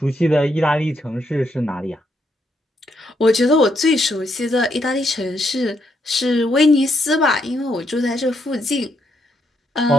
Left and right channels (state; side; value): normal; both; correlation 0.77